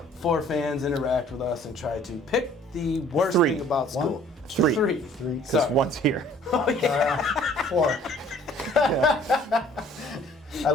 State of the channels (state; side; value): normal; both; correlation 0.55